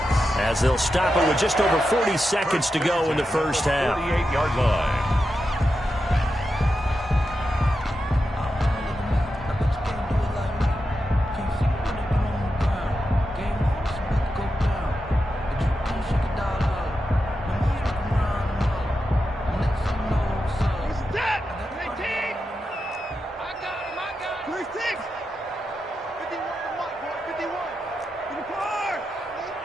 as they'll stop it with just over 40 seconds to go in the first half. 38-yard line.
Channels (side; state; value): both; normal; correlation 0.89